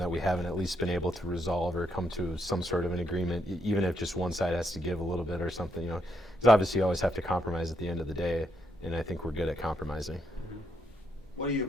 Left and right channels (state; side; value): normal; both; correlation 0.78